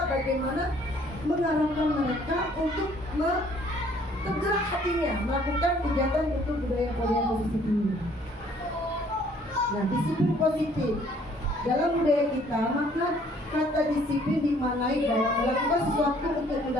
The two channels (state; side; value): normal; both; correlation 0.60